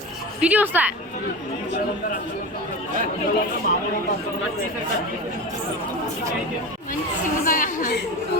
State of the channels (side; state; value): both; normal; correlation 0.27